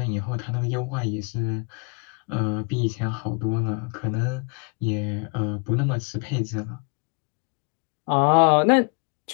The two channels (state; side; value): quieter; right; 34.8 dB